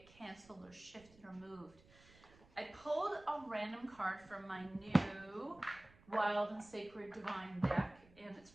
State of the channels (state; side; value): noise; right; rumble, 25 dB below the sound